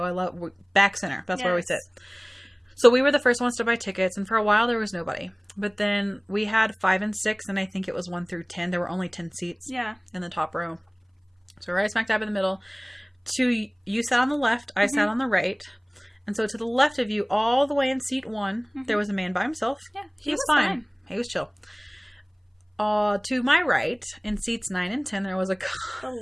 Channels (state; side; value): identical; both; correlation 1.00